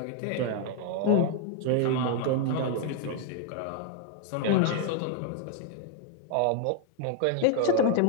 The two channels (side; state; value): both; different; correlation 0.00